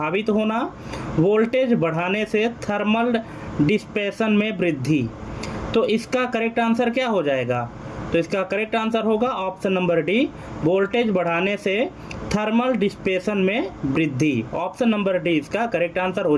होना, वोल्टेज बढ़ाने से थर्मल डिस्पेशन में वृद्धि। तो इसका करेक्ट आंसर क्या हो जाएगा? तो इसका करेक्ट आंसर होगा ऑप्शन नंबर डी, वोल्टेज बढ़ाने से थर्मल डिस्पेशन में वृद्धि। ऑप्शन नंबर डी इसका करेक्ट आंसर हो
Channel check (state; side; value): identical; both; correlation 1.00